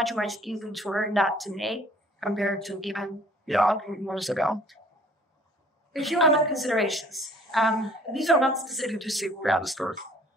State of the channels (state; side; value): normal; both; correlation 0.55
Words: much easier to learn that today compared to even years ago. A few other considerations. These are not specific to SQL data stores.